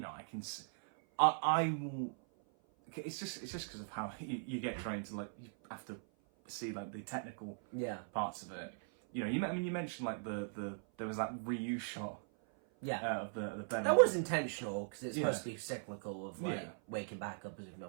I will, it's just because of how you get trained to, like, you have to see, like, the technical parts of it. You mentioned, like, there was that reuse shot. Yeah. Of the bed. That was intentional, because it's supposed to be cyclical of, like, waking back up as if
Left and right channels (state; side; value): silent; left; 51 dB below the other